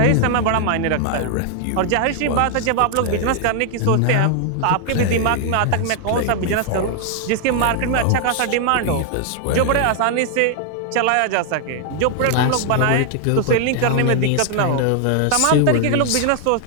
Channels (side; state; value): both; different; correlation 0.00